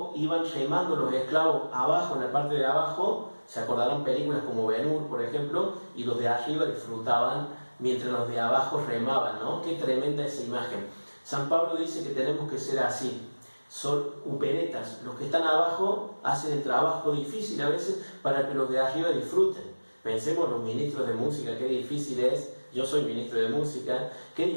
iban remando los esclavos abajo, en la parte de abajo. Se acordarán películas como Ben-Hur, por ejemplo, y los de arriba disfrutaban mientras los de abajo remaban, ¿no? Qué tremenda esa imagen. San Pablo dice que tenemos que ser así. Son uperetas. Los que están abajo hacen el trabajo difícil a veces para que los de arriba disfruten. Pensemos los ministros de música, qué difícil es. Yo soy ministro de música, qué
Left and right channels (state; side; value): inverted; both; correlation -1.00